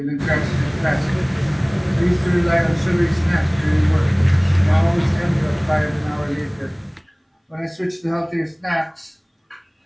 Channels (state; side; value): identical; both; correlation 1.00